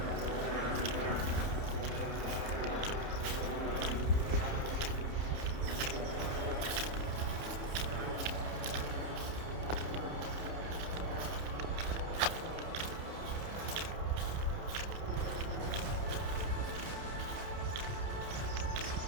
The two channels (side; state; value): left; late; 30 ms